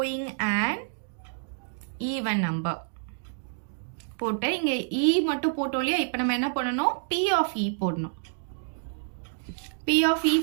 and even number போட்டு இங்கே இ மட்டும் போட்டோம் இல்லையா. இப்போ நம்ம என்ன பண்ணணும், பி ஆஃப் இ போடணும். P of E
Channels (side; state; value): left; silent; digital silence